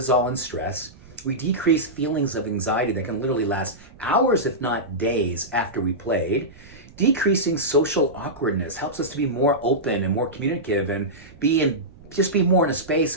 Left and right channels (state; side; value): noise; right; rumble, 22 dB below the sound